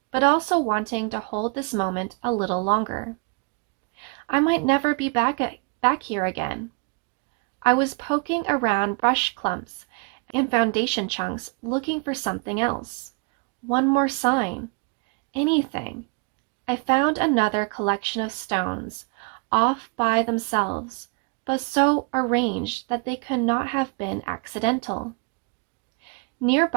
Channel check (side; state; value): left; quieter; 32.3 dB